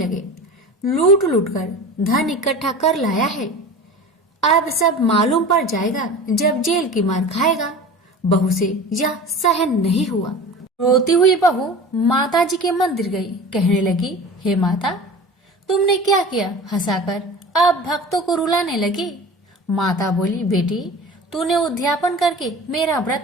लूट लूट कर धन इकट्ठा कर लाया है, अब सब मालूम पड़ जाएगा जब जेल की मार खाएगा। बहू से यह सहन नहीं हुआ। रोती हुई बहू माताजी के मंदिर गई। कहने लगी, हे माता, तुमने क्या किया? हंसाकर अब भक्तों को रुलाने लगी। माता बोली, बेटी, तूने उद्यापन करके मेरा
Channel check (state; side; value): normal; both; correlation 0.36